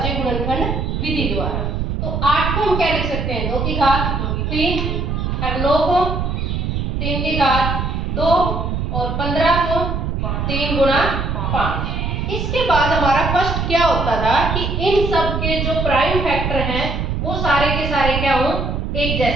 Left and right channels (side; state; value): right; noise; rumble, 1 dB below the sound